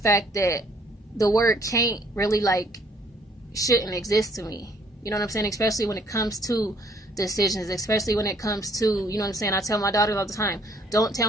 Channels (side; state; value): both; normal; correlation 0.62